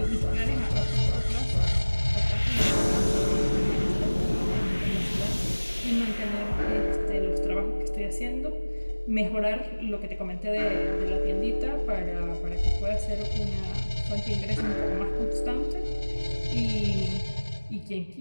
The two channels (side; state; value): both; inverted; correlation -1.00